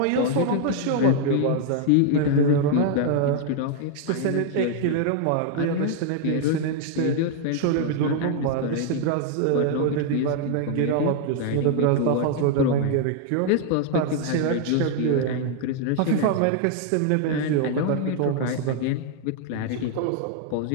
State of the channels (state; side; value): different; both; correlation 0.00